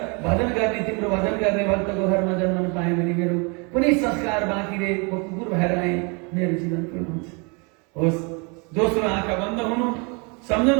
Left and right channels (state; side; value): quieter; left; 32.2 dB